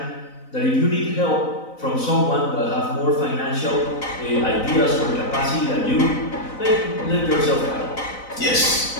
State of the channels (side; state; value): right; late; 4.0 ms